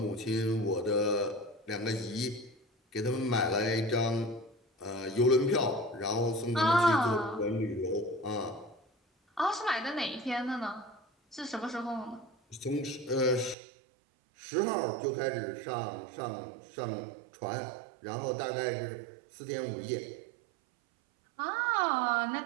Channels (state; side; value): drops out; left; at 13.6 s